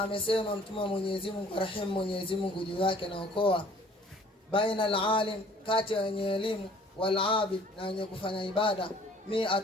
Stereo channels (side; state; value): both; normal; correlation 0.54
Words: amesema mtume Mwenyezi Mungu rahim Mwenyezi Mungu juu yake na okoa, baina alalim, kati ya wenye elimu, wal abid, na wenye kufanya ibada,